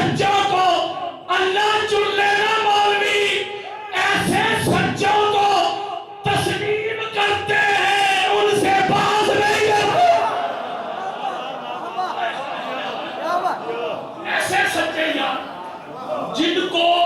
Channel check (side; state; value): both; identical; correlation 1.00